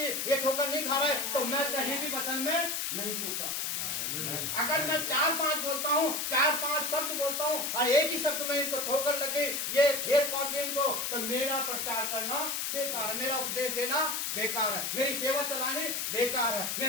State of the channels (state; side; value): noise; left; hiss, 1 dB below the sound